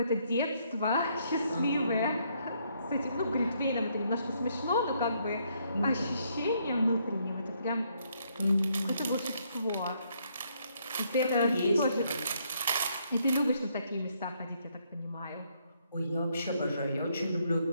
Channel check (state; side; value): inverted; both; correlation -0.72